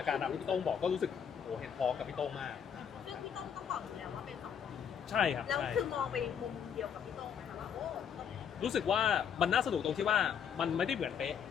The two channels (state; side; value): quieter; right; 7.8 dB